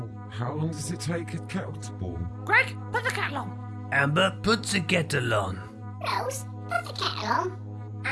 how long does it take a kettle to boil? Greg, put the kettle on. Amber, put the kettle on. Rose, put the kettle on.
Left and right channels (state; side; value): identical; both; correlation 1.00